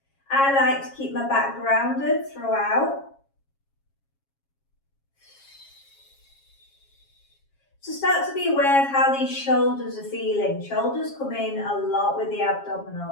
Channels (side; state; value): right; late; 7.3 ms